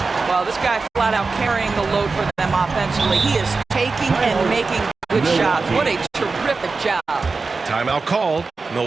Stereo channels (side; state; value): left; quieter; 4.2 dB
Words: Well, this guy flat out carrying the load for them offensively. He is taking and making good shots. What a terrific job. Timeout called.